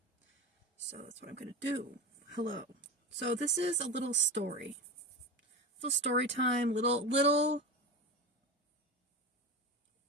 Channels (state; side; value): normal; both; correlation 0.23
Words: So that's what I'm going to do. Hello. So this is a little story. Little story time, little